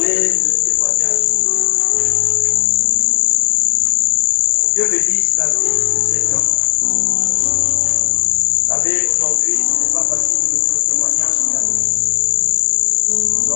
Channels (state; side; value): silent; right; digital silence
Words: de témoignage. Dieu bénisse la vie de cet homme. Vous savez, aujourd'hui, ce n'est pas facile de donner le témoignage qu'il a donné.